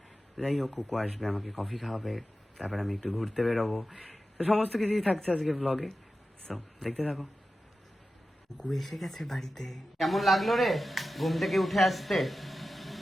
যাই হোক, খুকু আসবে, আমাকে কফি খাওয়াবে, তারপর আমি একটু ঘুরতে বেরোবো। তো সমস্ত কিছুই থাকছে আজকে ব্লগে, সো দেখতে থাকো। খুকু এসে গেছে বাড়িতে। কেমন লাগলো রে ঘুম থেকে উঠে আসতে?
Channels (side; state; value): both; normal; correlation 0.93